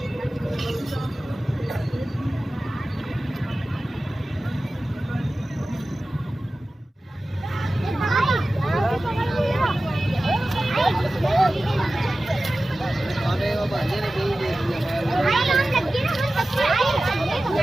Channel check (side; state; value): both; normal; correlation 0.96